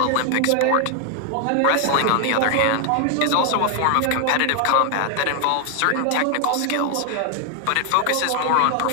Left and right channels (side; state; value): both; different; correlation 0.00